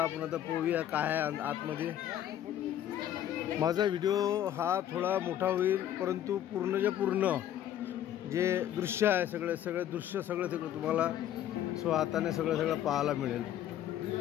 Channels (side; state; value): right; quieter; 11.3 dB